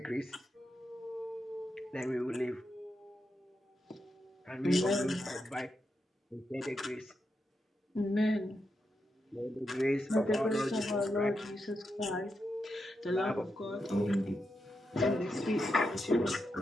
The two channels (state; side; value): normal; both; correlation 0.85